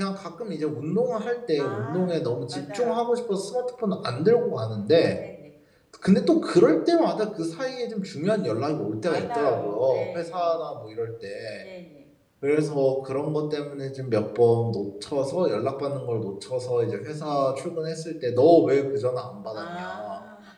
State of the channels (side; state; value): both; identical; correlation 1.00